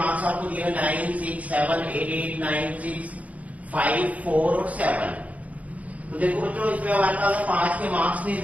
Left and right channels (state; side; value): late; left; 0.070 ms